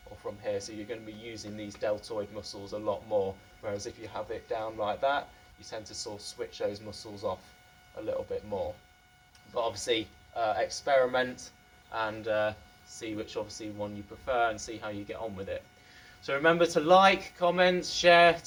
or from here. So you're going to be using these deltoid muscles a lot more. Whereas if you have it down like that, you tend to sort of switch those muscles off a little bit more. But obviously experiment and see which obviously one you prefer and see how you get on with it. So remember to like, comment, share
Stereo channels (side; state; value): both; identical; correlation 1.00